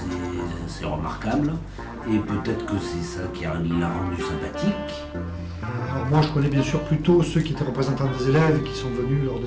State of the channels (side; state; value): both; identical; correlation 1.00